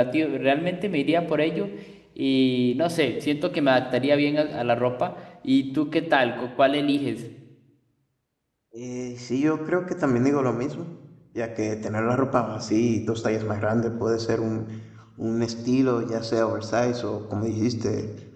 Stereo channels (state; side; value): identical; both; correlation 1.00